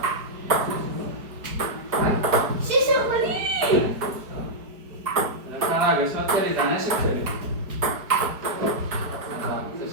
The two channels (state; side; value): late; left; 4.7 ms